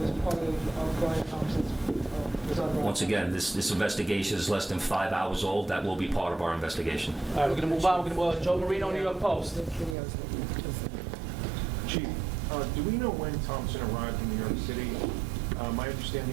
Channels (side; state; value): left; drops out; at 10.0 s